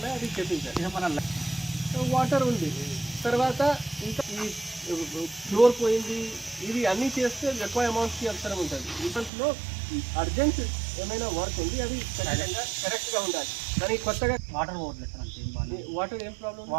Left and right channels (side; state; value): left; drops out; at 9.3 s